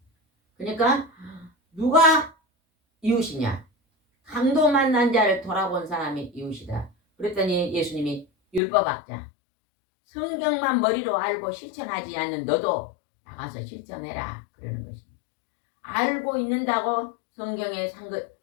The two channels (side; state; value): right; drops out; at 8.6 s